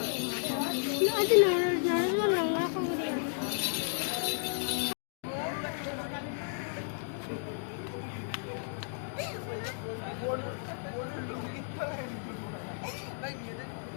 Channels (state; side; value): silent; right; digital silence